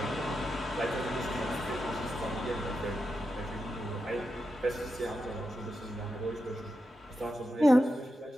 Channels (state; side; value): normal; both; correlation 0.88